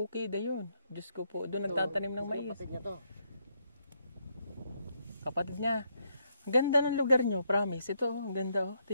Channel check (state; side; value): inverted; both; correlation -0.76